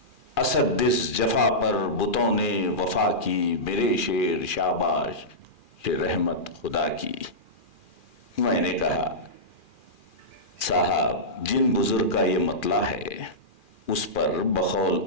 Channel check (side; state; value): right; late; 2.4 ms